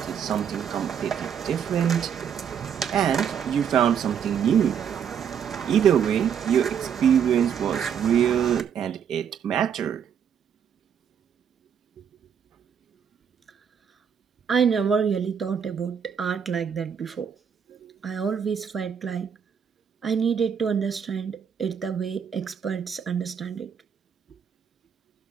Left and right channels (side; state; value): left; quieter; 7.9 dB